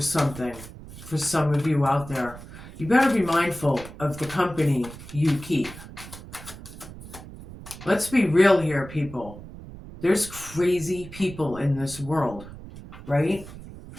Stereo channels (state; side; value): noise; right; rumble, 15 dB below the sound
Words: for some of you out there. You better be mindful of the company you keep. Let's be real here, people. There's crazy people in this world, right?